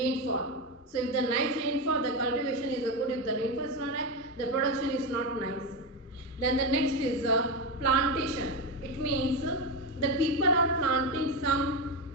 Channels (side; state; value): both; normal; correlation 0.13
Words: So if the nice rainfall, the cultivation is good. If the rainfall is not high, the production is not nice. Then the next is plantation. It means the people are planting some